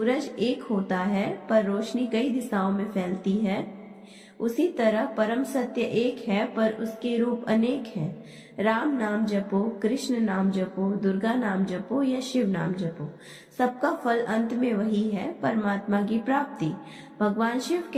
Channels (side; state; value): both; identical; correlation 1.00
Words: एक होता है पर रोशनी कई दिशाओं में फैलती है, उसी तरह परम सत्य एक है पर उसके रूप अनेक हैं। राम नाम जपो, कृष्ण नाम जपो, दुर्गा नाम जपो या शिव नाम जपो, सबका फल अंत में वही है, परमात्मा की प्राप्ति। भगवान शिव